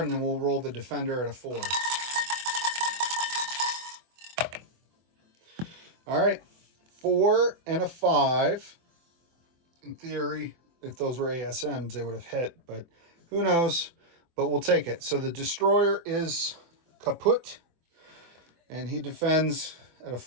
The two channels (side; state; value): left; late; 24 ms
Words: then we'll roll the defender at a 4. All right, 4 and a 5. In theory, if those were ASMs, they would have hit, but who knows? But we'll take it. So the destroyer is kaput, and he defends at a